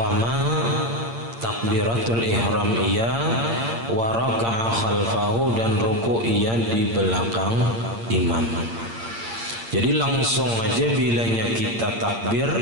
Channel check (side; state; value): left; late; 8.7 ms